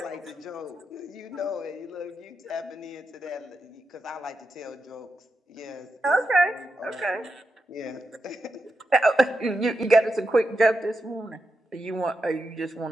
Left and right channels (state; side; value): normal; both; correlation 0.87